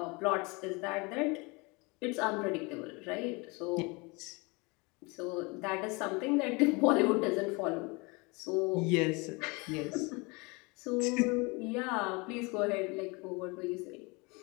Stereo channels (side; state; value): right; quieter; 27.7 dB